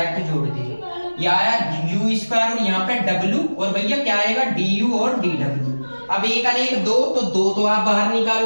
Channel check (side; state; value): both; inverted; correlation -1.00